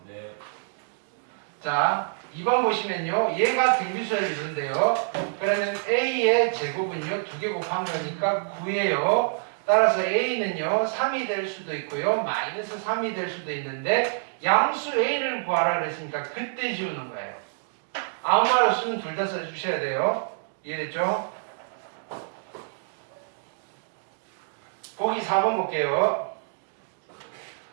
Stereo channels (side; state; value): left; silent; digital silence